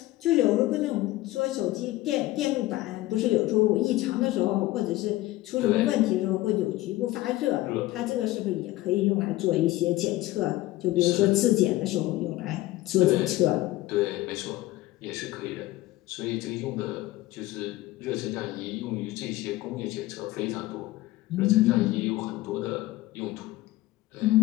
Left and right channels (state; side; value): quieter; right; 17.3 dB